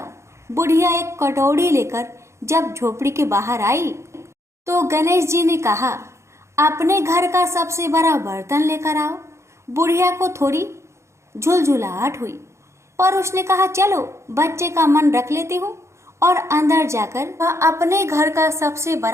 बुढ़िया एक कटोरी लेकर जब झोपड़ी के बाहर आई तो गणेश जी ने कहा, अपने घर का सबसे बड़ा बर्तन लेकर आओ। बुढ़िया को थोड़ी झुलझुलाहट हुई, पर उसने कहा, चलो बच्चे का मन रख लेती हूँ। और अंदर जाकर वह अपने घर का सबसे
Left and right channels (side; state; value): left; late; 0.14 ms